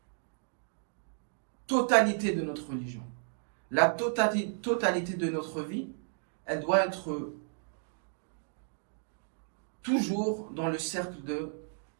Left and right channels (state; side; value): silent; left; digital silence